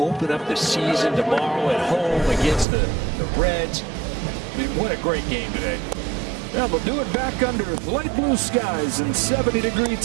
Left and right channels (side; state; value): left; drops out; at 2.7 s